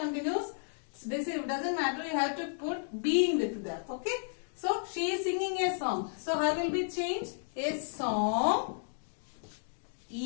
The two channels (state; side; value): silent; right; digital silence